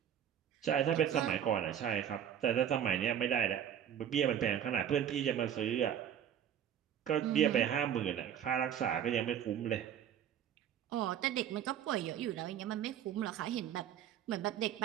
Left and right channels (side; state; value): left; quieter; 9.5 dB